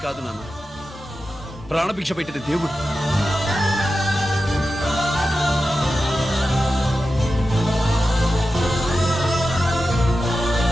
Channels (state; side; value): normal; both; correlation 0.92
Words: కాదు నాన్న, ప్రాణభిక్ష పెట్టిన దేవుడు.